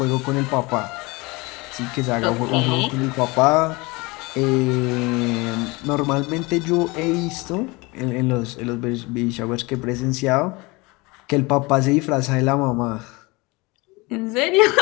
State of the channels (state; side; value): quieter; right; 24.8 dB